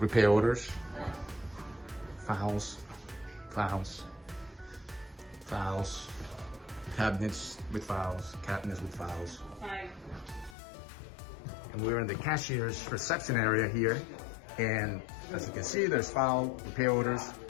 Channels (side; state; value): right; drops out; at 10.6 s